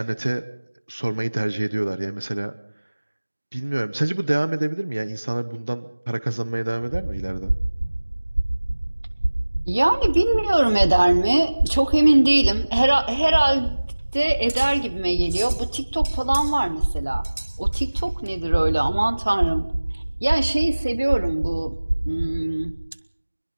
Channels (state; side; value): inverted; both; correlation -1.00